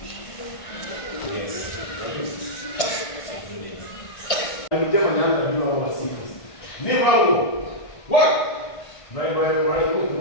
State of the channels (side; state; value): right; late; 1.5 ms